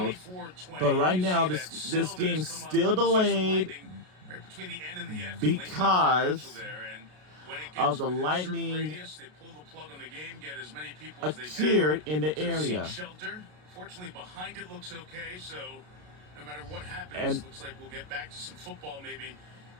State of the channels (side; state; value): left; late; 33 ms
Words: But right now, this game's still delayed because of the lightning appeared in the area. Fortunately, behind it looks okay, so no matter what happens, looks like we'll get back to some football maybe